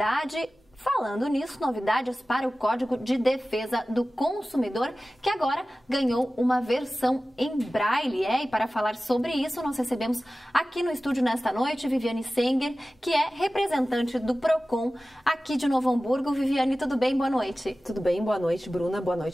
Falando nisso, novidades para o Código de Defesa do Consumidor, que agora ganhou uma versão em braille. E para falar sobre isso, nós recebemos aqui no estúdio nesta noite Viviane Senger, que é representante do PROCON aqui de Novo Hamburgo. Viviane, tudo bem? Boa noite. Tudo bem, boa noite, Bruna, boa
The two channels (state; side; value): normal; both; correlation 0.96